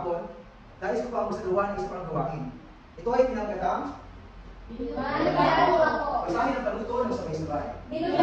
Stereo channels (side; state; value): both; identical; correlation 1.00